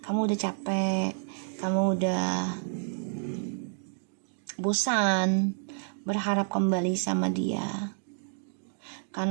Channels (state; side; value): silent; left; digital silence